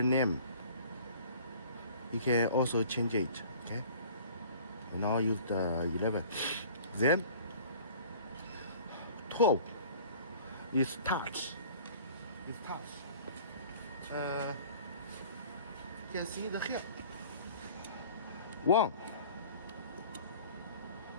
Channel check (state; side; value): inverted; both; correlation -0.48